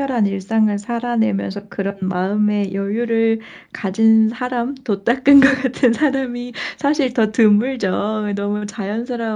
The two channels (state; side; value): identical; both; correlation 1.00